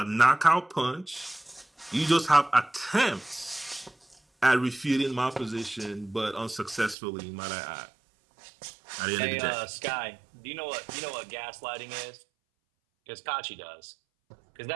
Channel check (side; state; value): left; drops out; at 7.0 s